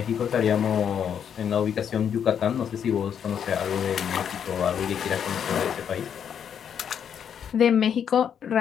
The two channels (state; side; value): quieter; right; 8.2 dB